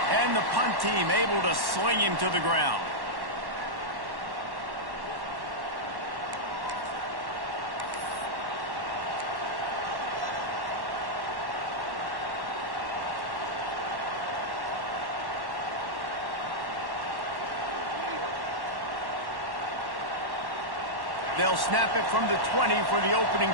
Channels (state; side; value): late; left; 1.1 ms